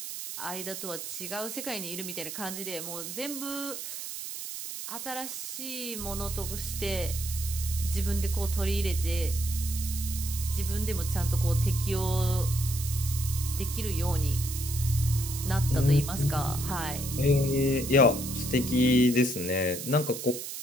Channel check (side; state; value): right; noise; hiss, 7 dB below the sound